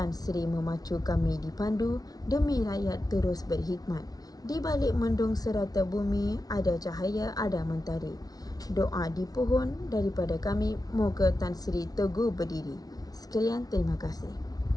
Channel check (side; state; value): right; late; 0.18 ms